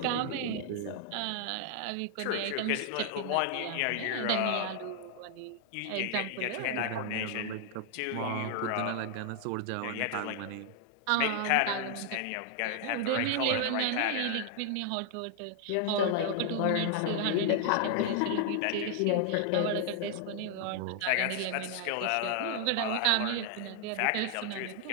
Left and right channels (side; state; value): both; different; correlation 0.00